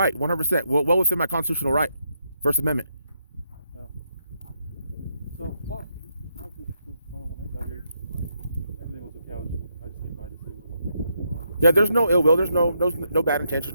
100%. Well within my constitutional right. First Amendment. So, well, when I got here, everything was a couch. I just came by to see what was going on. Yeah, there's no ill will. There's no bad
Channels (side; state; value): both; inverted; correlation -0.79